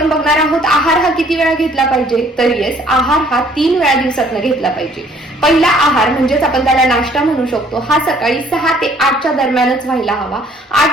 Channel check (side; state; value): both; normal; correlation 0.60